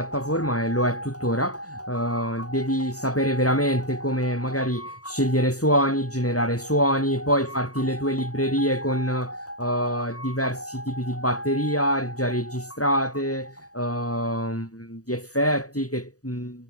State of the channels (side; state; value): right; late; 0.67 ms